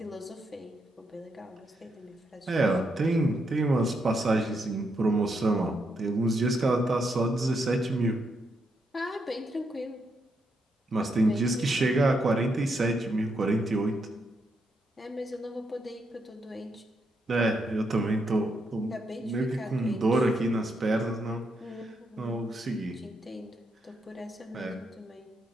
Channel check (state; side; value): normal; both; correlation 0.80